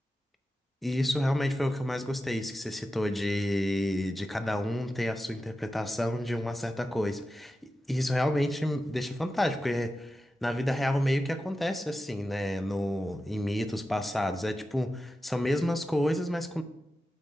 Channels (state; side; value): normal; both; correlation 0.92